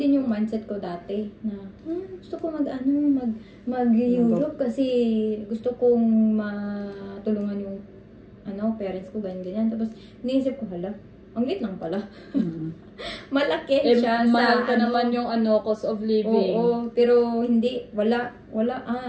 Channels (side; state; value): both; identical; correlation 1.00